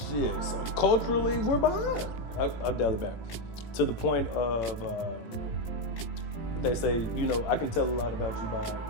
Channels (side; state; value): right; late; 18 ms